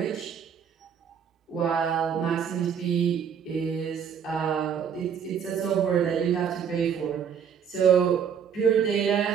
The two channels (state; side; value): quieter; left; 7.6 dB